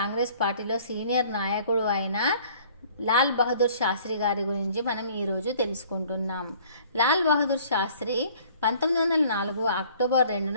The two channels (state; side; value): inverted; both; correlation -0.54